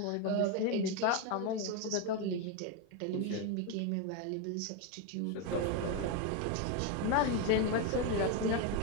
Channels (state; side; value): different; both; correlation 0.02